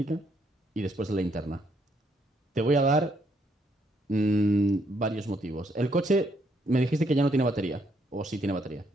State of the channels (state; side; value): normal; both; correlation 0.72